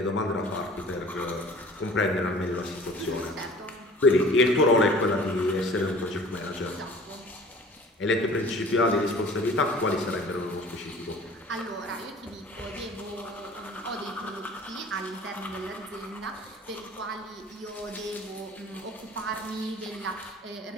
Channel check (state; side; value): normal; both; correlation 0.47